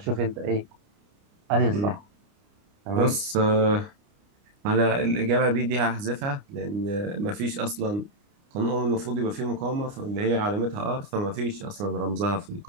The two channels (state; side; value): late; left; 29 ms